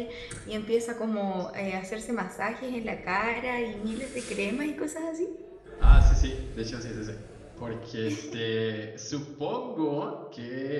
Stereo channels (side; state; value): both; identical; correlation 1.00